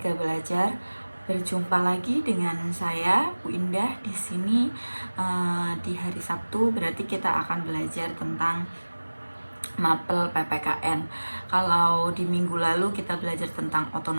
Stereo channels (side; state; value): both; inverted; correlation -1.00